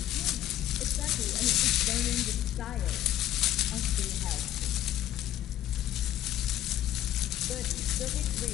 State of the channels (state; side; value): quieter; right; 12.7 dB